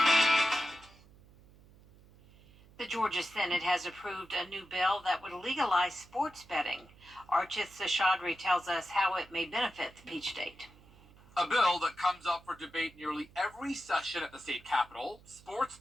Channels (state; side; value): noise; right; hum, 25 dB below the sound